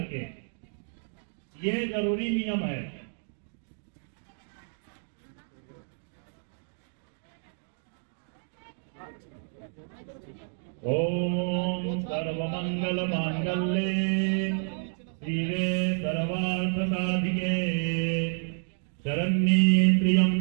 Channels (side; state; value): left; silent; digital silence